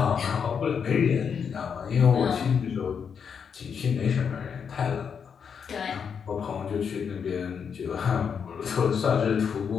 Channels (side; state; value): right; quieter; 6.8 dB